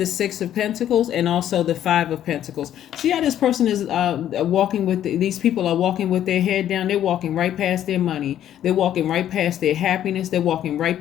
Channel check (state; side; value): quieter; right; 11.1 dB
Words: 6 of Pentacles and also the 5 of Pentacles. See how this person is walking with, these people are walking with their head down. They're walking right past their money. They're walking right past their happiness. They're walking right